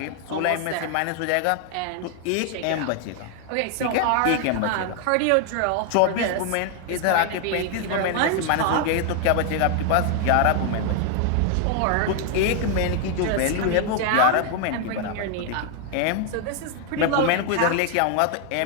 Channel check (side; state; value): both; different; correlation 0.00